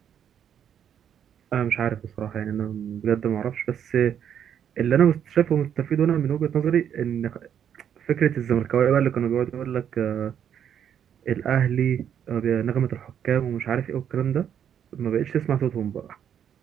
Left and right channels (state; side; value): quieter; left; 9.0 dB